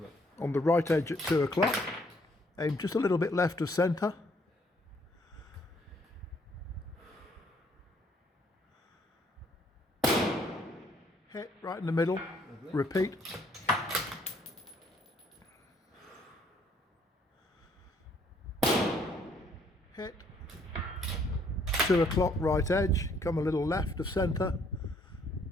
On the right edge at 2 o'clock. Aim just a little bit left of centre. Hit right in the middle. Repeat. Hit. 2 o'clock right edge. Come a little left of centre.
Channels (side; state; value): both; normal; correlation 0.66